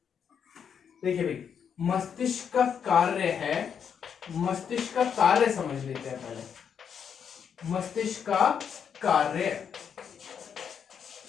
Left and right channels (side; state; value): right; quieter; 7.5 dB